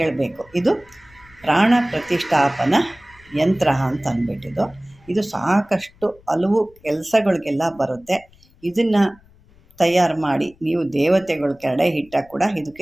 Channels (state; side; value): noise; left; rumble, 28 dB below the sound